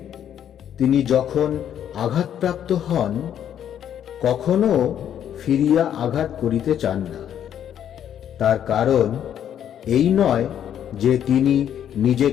তিনি যখন আঘাতপ্রাপ্ত হন কখনো ফিরিয়া আঘাত করিতে চান না। তার কারণ এই নয় যে তিনি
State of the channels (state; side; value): quieter; right; 9.8 dB